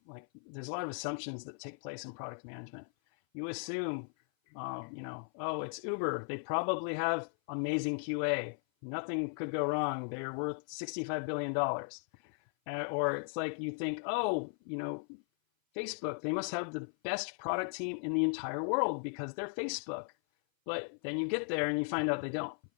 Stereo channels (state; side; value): silent; right; 53 dB below the other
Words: like, there's a lot of assumptions that take place in product management. You assume, oh, it's Uber. They probably have amazing QA. Nothing could go wrong. They're worth $65 billion. Or it's like you think, oh, Facebook, they must have the best product team in the entire world because they're Facebook. But then you get there and you find out they don't.